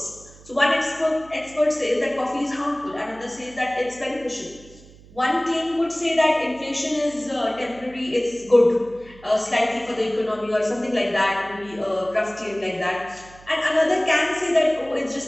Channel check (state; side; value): noise; right; hum, 22 dB below the sound